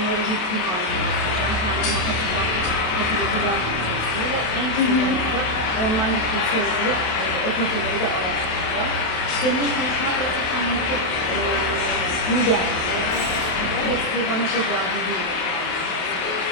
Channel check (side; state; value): right; late; 27 ms